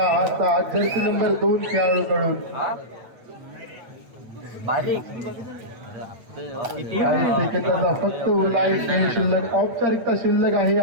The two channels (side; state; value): left; late; 8.5 ms